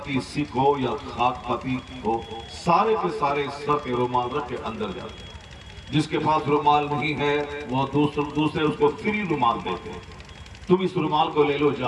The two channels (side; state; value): both; identical; correlation 1.00